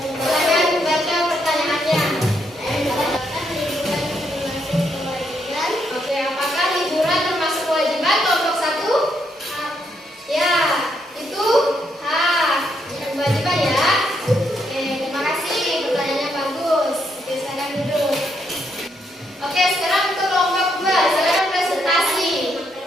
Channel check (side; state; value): both; normal; correlation 0.77